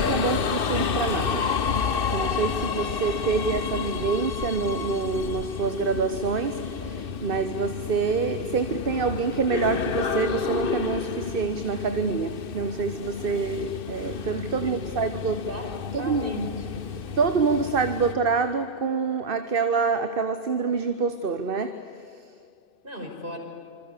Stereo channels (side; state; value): left; late; 2.6 ms